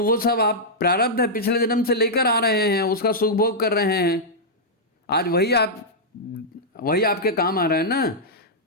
वो सब आप प्रारब्ध है, पिछले जन्म से लेकर आ रहे हैं, उसका सुख भोग कर रहे हैं। आज वही आपके काम आ रहा है ना।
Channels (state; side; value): normal; both; correlation -0.08